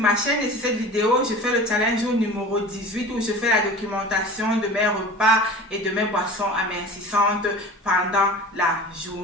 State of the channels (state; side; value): normal; both; correlation 0.38